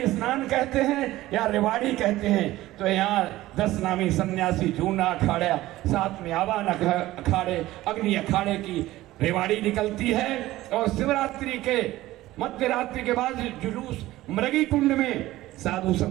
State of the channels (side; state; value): left; quieter; 16.5 dB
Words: स्नान कहते हैं या रेवाड़ी कहते हैं, तो यहाँ 10 नामी सन्यासी जूना अखाड़ा, साथ में आवान अखाड़े, अग्नि अखाड़े की रेवाड़ी निकलती है और शिवरात्रि के मध्य रात्रि के बाद जुलूस मृगी कुंड में साधु